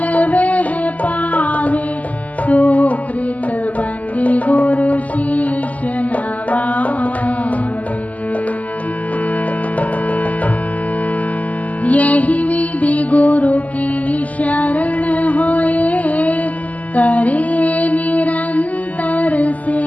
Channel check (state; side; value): late; right; 0.075 ms